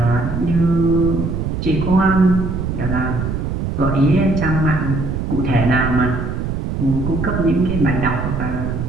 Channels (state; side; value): noise; right; rumble, 3 dB below the sound